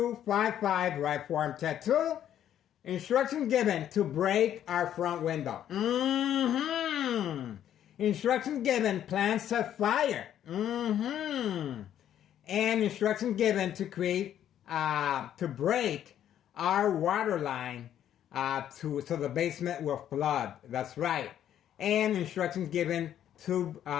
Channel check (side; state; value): right; quieter; 10.6 dB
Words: right forearm tattoo. Instructions given to break our front window. Instructions given, plans set fire. And instructions given to create, to break our water line so the basement will flood. That's right. And instructions given to